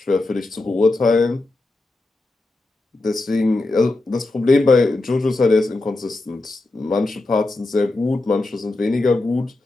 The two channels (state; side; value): quieter; right; 3.0 dB